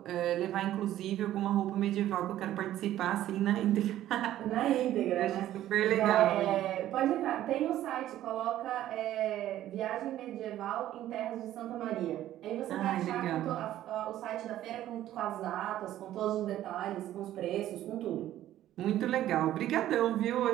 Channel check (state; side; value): quieter; left; 13.1 dB